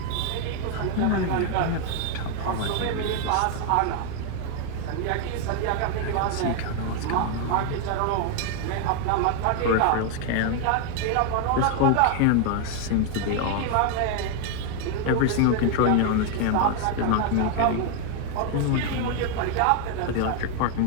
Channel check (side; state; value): both; different; correlation 0.00